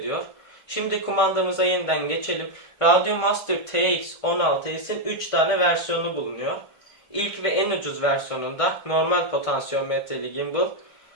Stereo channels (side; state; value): right; late; 1.5 ms